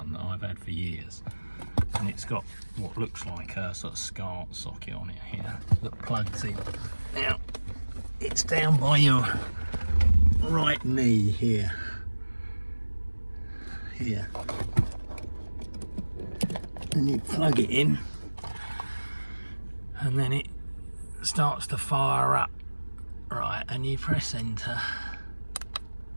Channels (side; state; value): both; inverted; correlation -1.00